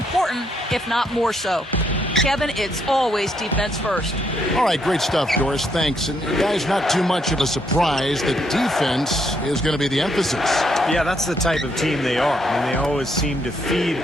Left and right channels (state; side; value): normal; both; correlation 0.74